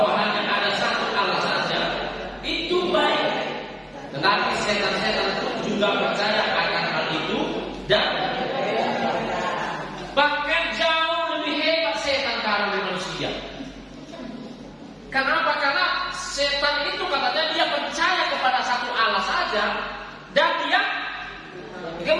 hanya ada satu Allah saja, itu baik. Tetapi setan-setan pun juga percaya akan hal itu dan bahkan jauh lebih hebat setan dari manusia. Kenapa? Karena setan itu katanya dia percaya kepada satu Allah saja dan dia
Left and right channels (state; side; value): identical; both; correlation 1.00